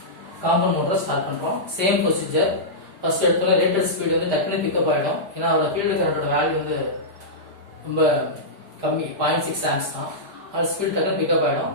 காம்பவுண்ட் மோட்டரை ஸ்டார்ட் பண்றோம். Same procedure. ஃபர்ஸ்ட் எடுத்தோட ரேட்டட் ஸ்பீடு வந்து டக்குனு பிக்கப் ஆயிடும். ஏன்னா அதோட ஃபீல்டு கரண்டோட வேல்யூ வந்து ரொம்ப கம்மி, 0.6 amps தான். அது ஸ்பீட் டக்குனு பிக்கப் ஆயிடும்.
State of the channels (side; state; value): left; late; 5.0 ms